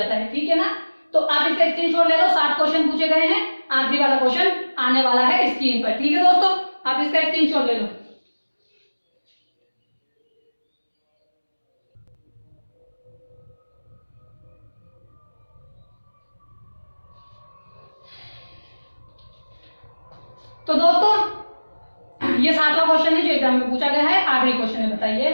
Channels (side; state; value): both; inverted; correlation -1.00